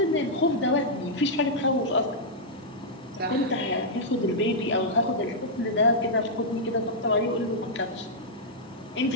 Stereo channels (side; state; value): both; normal; correlation -0.07